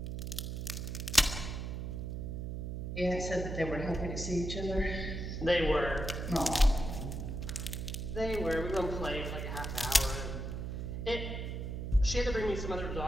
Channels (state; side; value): noise; right; hum, 4 dB below the sound